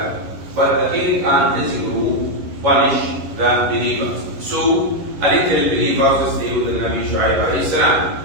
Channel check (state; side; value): late; left; 11 ms